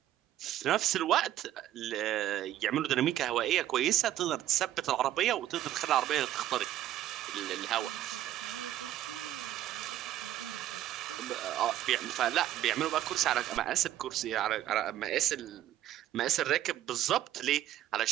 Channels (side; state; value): left; quieter; 12.7 dB